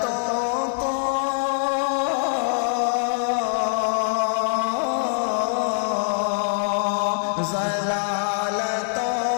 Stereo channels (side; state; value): right; silent; 62 dB below the other